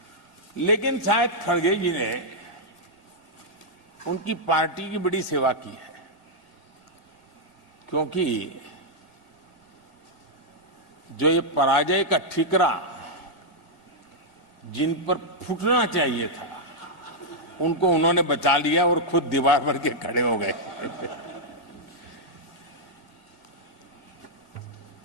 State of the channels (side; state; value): right; late; 1.9 ms